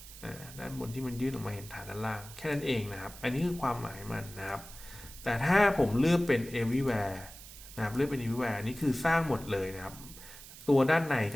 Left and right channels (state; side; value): noise; right; hiss, 16 dB below the sound